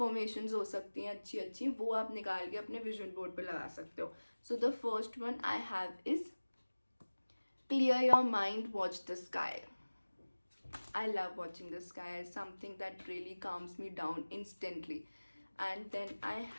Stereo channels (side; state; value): both; inverted; correlation -1.00